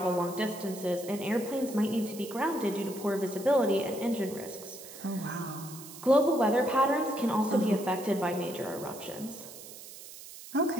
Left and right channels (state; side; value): noise; right; hiss, 15 dB below the sound